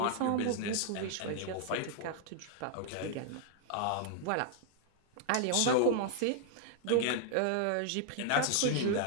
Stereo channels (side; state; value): both; different; correlation 0.00